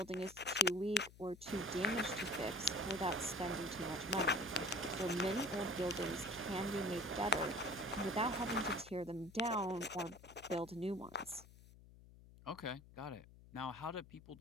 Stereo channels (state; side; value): noise; left; hum, 20 dB below the sound